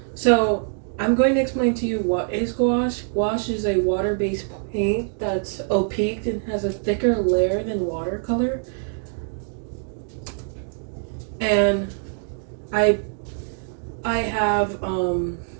So I'm going to explain to you what is gouache. Gouache is a water-based paint that's opaque and has a thicker layer than watercolor. And I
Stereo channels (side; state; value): left; silent; digital silence